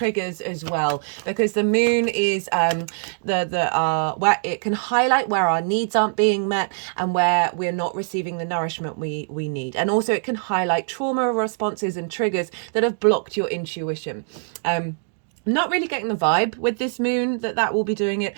as well, because the moon is where it can highlight where our needs aren't being met and where we're not receiving the nourishment we need. And also it can highlight trauma responses and triggers that have blocked your intuition. Not really getting the vibe with this moon that will be doing it,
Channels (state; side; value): silent; left; digital silence